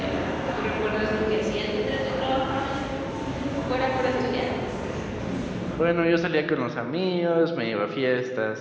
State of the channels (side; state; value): both; identical; correlation 1.00